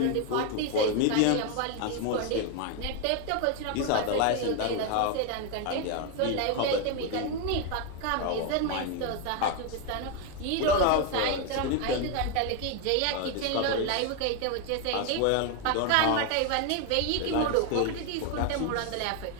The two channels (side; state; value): both; different; correlation 0.01